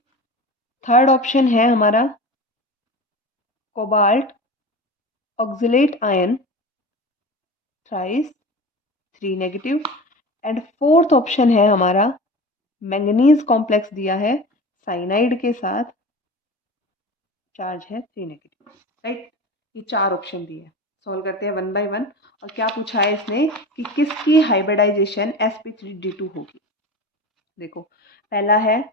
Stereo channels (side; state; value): both; normal; correlation 0.31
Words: Third option है हमारा cobalt oxalate ion thrice 3 negative. And fourth option है हमारा मैंगनीज कॉम्प्लेक्स दिया है साइनाइड के साथ, चार्ज है 3 नेगेटिव, राइट। ये 4 ऑप्शन दिए हैं, सॉल्व करते हैं 1 बाय 1। और क्या पूछा है इसने कि किसकी हाइब्रिडाइजेशन sp3d2 होगी। देखो पहला है,